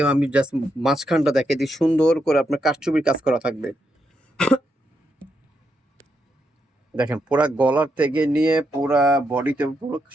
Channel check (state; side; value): normal; both; correlation 0.81